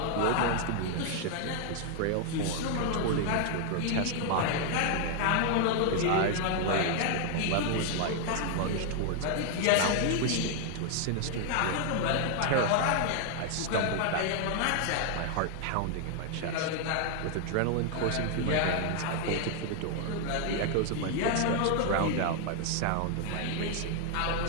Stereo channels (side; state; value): both; different; correlation 0.00